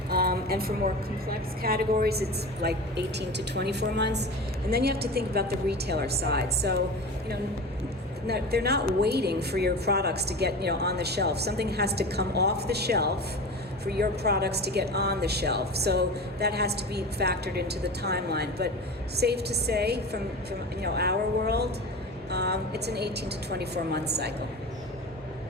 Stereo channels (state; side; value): normal; both; correlation 0.30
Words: and for more complex categories, it's like 18 to 24 months. And then you have to think about the retailer side. So, they're not waiting for your products to get, on the shelf. Something has to come off the shelf for your products to get on the shelf. So that has to be factored into the timeline. But safe to say, from our world, it's an 18 to 24 month cycle.